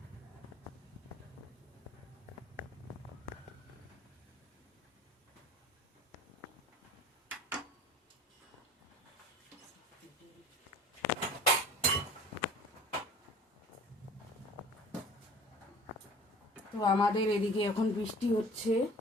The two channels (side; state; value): both; normal; correlation 0.44